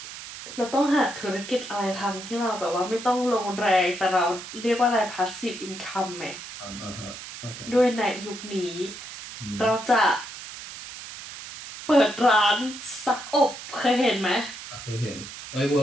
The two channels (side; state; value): right; noise; hiss, 12 dB below the sound